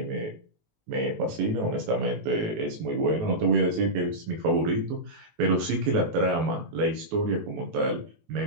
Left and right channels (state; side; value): late; left; 19 ms